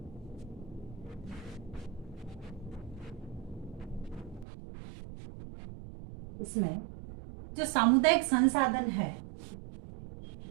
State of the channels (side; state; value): left; drops out; at 4.5 s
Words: इसमें जो सामुदायिक संसाधन है